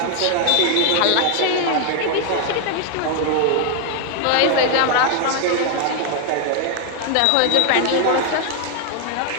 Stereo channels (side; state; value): both; different; correlation 0.00